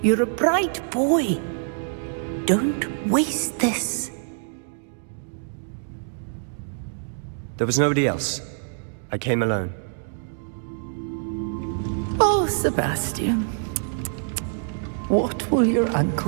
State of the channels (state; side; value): silent; left; digital silence